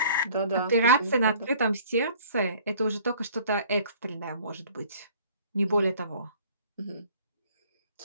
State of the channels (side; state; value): both; inverted; correlation -0.53